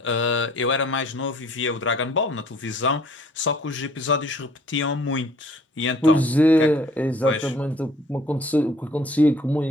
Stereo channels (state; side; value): normal; both; correlation 0.56